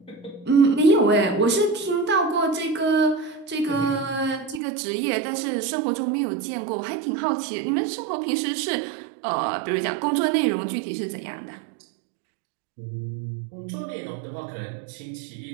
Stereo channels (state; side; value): drops out; left; at 4.6 s